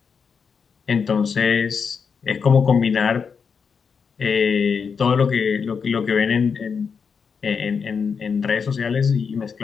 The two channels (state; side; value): quieter; right; 6.0 dB